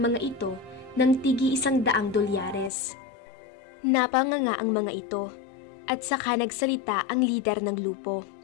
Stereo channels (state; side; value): drops out; right; at 2.7 s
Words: mga ito ng tigi $100. Napanganga ang mga ito at saka nagsalita ang lider ng grupo.